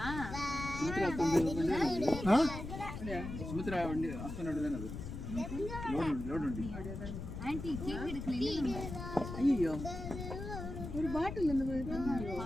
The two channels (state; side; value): noise; left; rumble, 7 dB below the sound